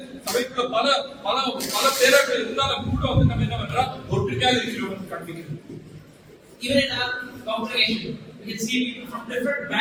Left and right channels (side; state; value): both; identical; correlation 1.00